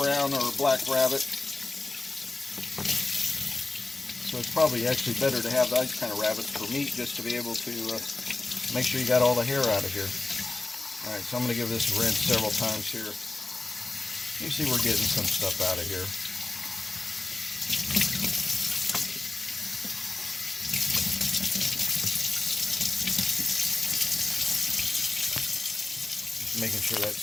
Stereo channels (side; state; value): right; quieter; 3.2 dB